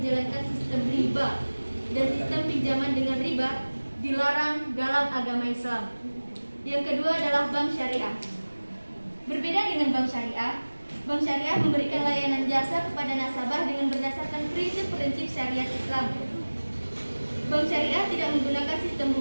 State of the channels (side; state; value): both; inverted; correlation -1.00